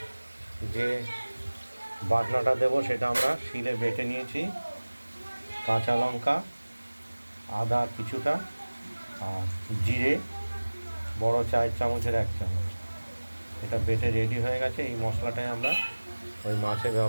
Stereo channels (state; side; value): inverted; both; correlation -1.00